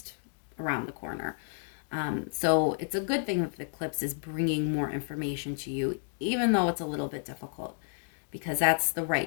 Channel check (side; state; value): right; silent; digital silence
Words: around the corner. So it's a good thing that the eclipse is bringing more information to you, even though it's a little bit difficult, because that's the